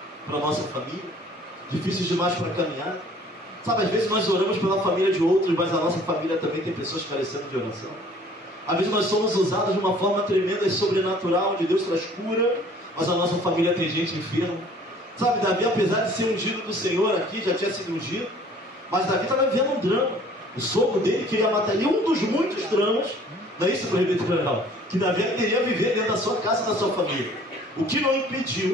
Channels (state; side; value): normal; both; correlation 0.53